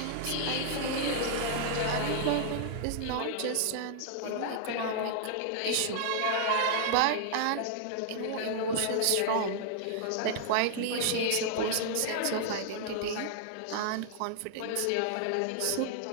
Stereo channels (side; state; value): both; different; correlation -0.01